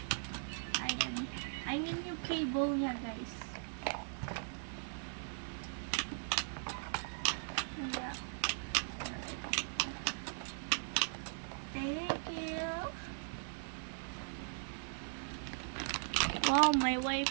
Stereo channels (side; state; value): left; silent; 52 dB below the other